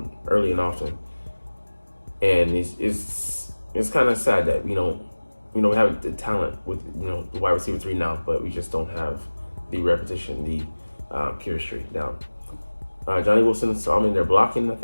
early and often. And it's kind of sad that we don't we have the talent with, the wide receiver 3 now, but we just don't have the repetition, the chemistry down. Johnny Wilson saw him in there blocking, I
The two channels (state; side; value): inverted; both; correlation -1.00